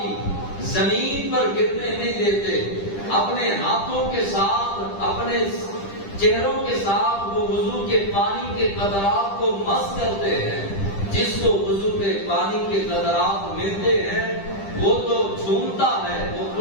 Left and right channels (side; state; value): right; late; 10 ms